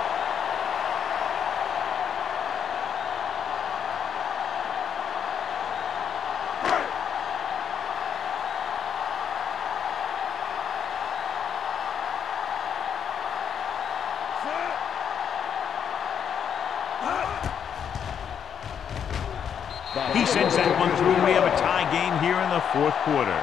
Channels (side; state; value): right; quieter; 8.1 dB